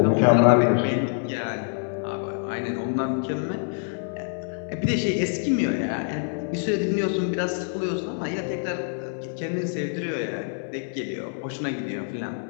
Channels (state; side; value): silent; right; 61 dB below the other